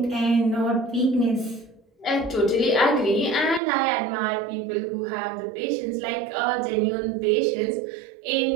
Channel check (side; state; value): left; drops out; at 3.6 s